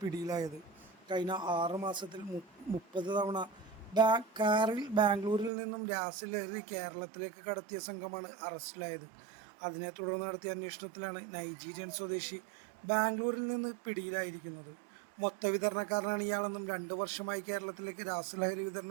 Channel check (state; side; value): drops out; left; at 5.5 s